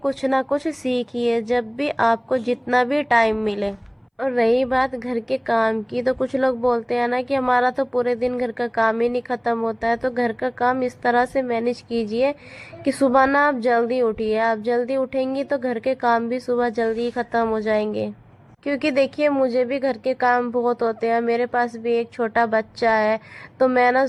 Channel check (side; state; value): both; identical; correlation 1.00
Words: ना कुछ सीखिए जब भी आपको जितना भी टाइम मिले। और रही बात घर के काम की, तो कुछ लोग बोलते हैं ना कि हमारा तो पूरे दिन घर का काम ही नहीं खत्म होता है। तो घर का काम इस तरह से मैनेज कीजिए कि सुबह ना आप जल्दी उठिए। आप जल्दी उठेंगी तो घर के काम भी सुबह जल्दी ही खत्म हो जाएंगे। क्योंकि देखिए मुझे भी घर के काम बहुत होते हैं, मेरे पास भी एक छोटा बच्चा है। तो मैं ना